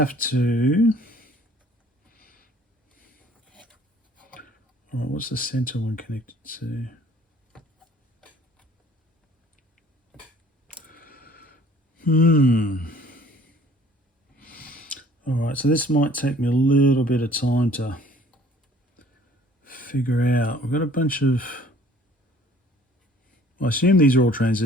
to... All right, what's the center one connected to? All right, so this might take me a little bit of time to figure out. We've got a bunch of... I assume these are all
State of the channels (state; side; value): normal; both; correlation 0.54